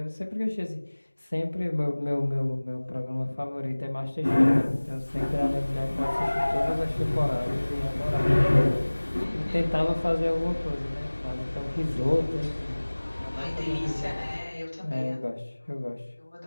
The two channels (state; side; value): inverted; both; correlation -1.00